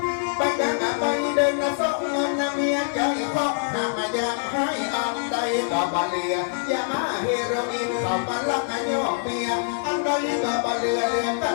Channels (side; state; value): right; silent; digital silence